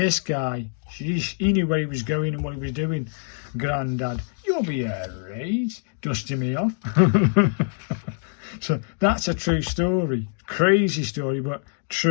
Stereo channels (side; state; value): right; silent; 62 dB below the other